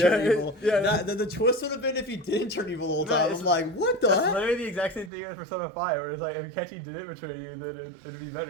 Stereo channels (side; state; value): left; drops out; at 5.1 s